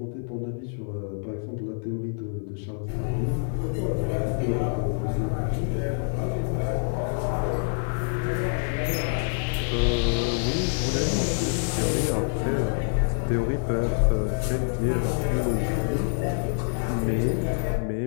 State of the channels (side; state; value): right; silent; digital silence